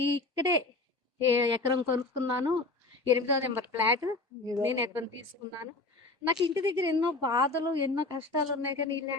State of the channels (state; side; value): quieter; right; 3.2 dB